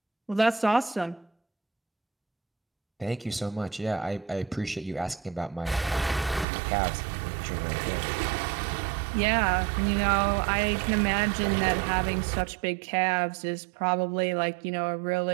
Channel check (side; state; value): left; drops out; at 6.5 s